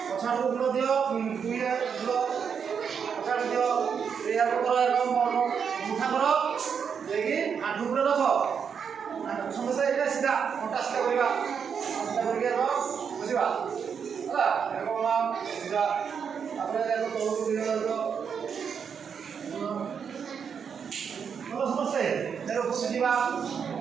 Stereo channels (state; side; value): quieter; left; 6.9 dB